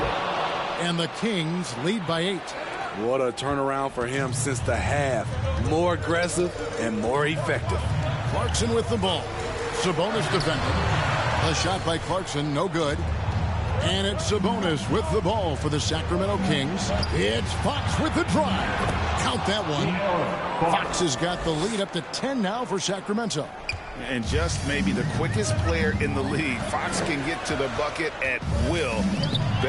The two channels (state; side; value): identical; both; correlation 1.00